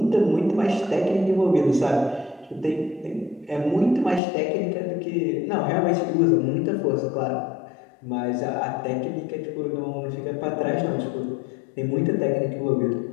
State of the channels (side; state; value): right; drops out; at 4.2 s